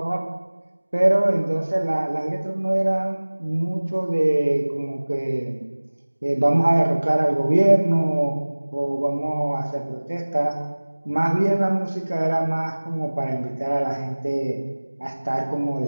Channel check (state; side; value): inverted; both; correlation -1.00